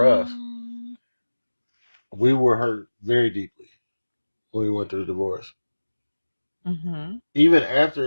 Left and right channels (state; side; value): inverted; both; correlation -1.00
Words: us, we were hurt very deeply when we went through the divorce. Even